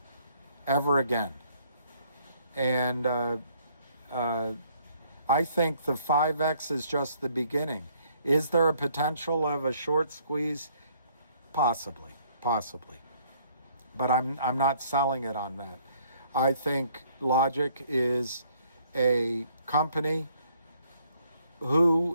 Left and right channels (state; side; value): inverted; both; correlation -0.64